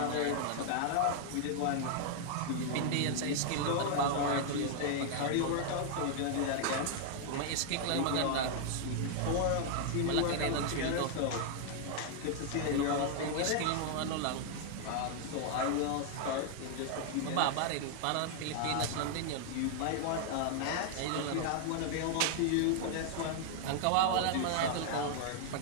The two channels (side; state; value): both; different; correlation 0.00